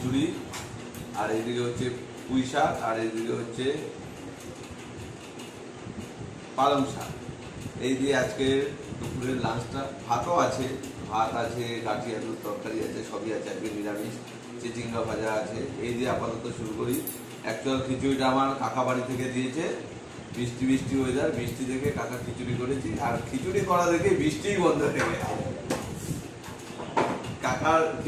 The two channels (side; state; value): both; identical; correlation 1.00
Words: আর এইদিকে হচ্ছে পুঁই শাক, আর এইদিকে হচ্ছে পালং শাক। এই দিয়ে আজকে দুপুরের লাঞ্চটা। ভাতও আছে, ভাত আছে, গাঠি আলুর তরকারি আছে, সবই আছে। আজকে নিরামিষ, চিচিঙ্গা ভাজা আছে। এই দিয়ে আপাতত শুরু করি। অ্যাকচুয়াল খিচুড়িটা আমার কাকা বাড়ি থেকে দিয়েছে। বৃষ্টি বৃষ্টি ওয়েদার, বৃষ্টি দেখে কাকা খিচুড়ি করেছি, আর খিচুড়ি করা দেখে বৃষ্টিই বন্ধ হয়ে গেছে। কাকার